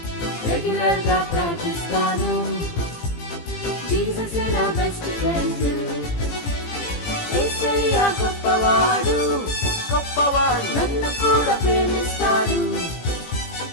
రెగ్యులర్ గా ప్రార్థిస్తాను జీసస్ నా బెస్ట్ ఫ్రెండ్ యేసయ్య గొప్పవాడు గొప్పవాడు నన్ను కూడా ప్రేమిస్తాడు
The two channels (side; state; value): right; late; 18 ms